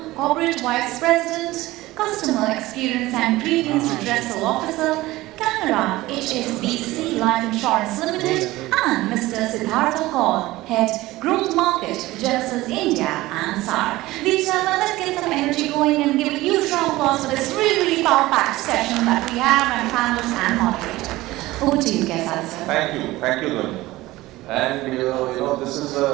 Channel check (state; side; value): quieter; left; 18.2 dB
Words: Corporate Vice President, Customer Experience and Grievance Redressal Officer, Canara HSBC Life Insurance Limited, and Mr. Siddhartha Kaul, Head Growth Market, Genesys India and SAARC. Ladies and gentlemen, let's get some energy going and give a huge round of applause for this really power-packed session that we have and panelists and moderator. Over to you, Kayzad, sir. Thank you, Lynn. And this is